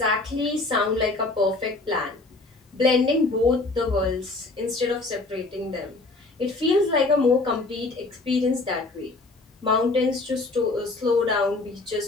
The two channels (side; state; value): right; quieter; 3.3 dB